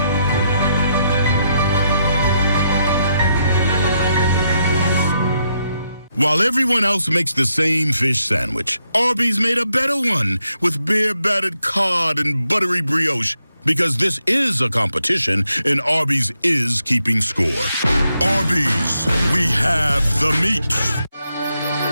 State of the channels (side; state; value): both; inverted; correlation -0.80